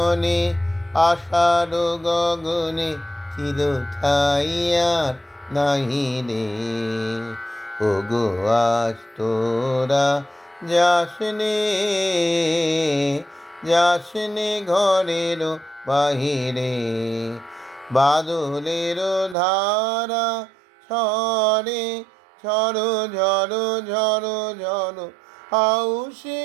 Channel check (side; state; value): left; drops out; at 19.4 s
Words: আষাঢ় গগনে চির ছাইয়ার নাহি রে। ওগো আজ তোরা যাসনে, যাসনে ঘরের বাহিরে। বাদলের ধারা ঝরে ঝরো ঝরো ঝরো ঝরো,